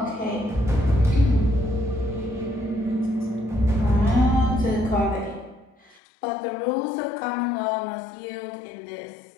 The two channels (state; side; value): drops out; right; at 6.0 s